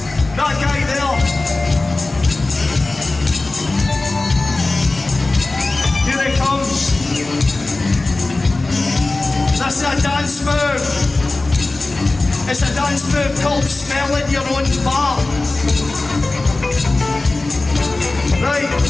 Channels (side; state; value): right; quieter; 3.2 dB